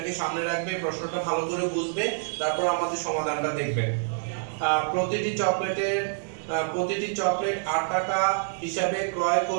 সামনে রাখবে, প্রশ্নটা ভালো করে বুঝবে, তারপর আমাদের সমাধানটা দেখবে। প্রতিটি চকলেট 8 টাকা হিসাবে ক্রয়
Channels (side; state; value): left; silent; digital silence